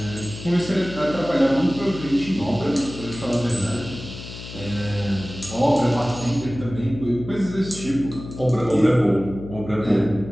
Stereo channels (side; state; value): left; noise; hum, 12 dB below the sound